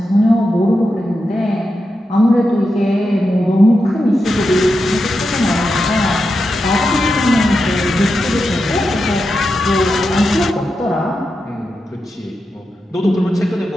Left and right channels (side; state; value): both; normal; correlation 0.88